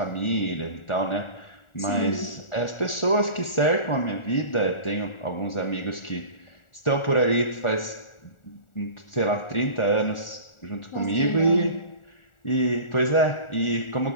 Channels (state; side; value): late; right; 1.4 ms